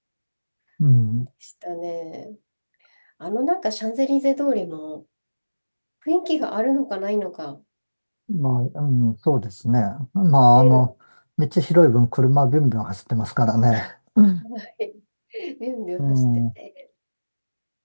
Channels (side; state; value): both; inverted; correlation -1.00